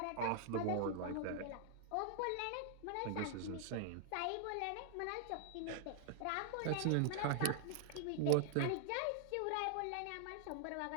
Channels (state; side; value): different; both; correlation 0.00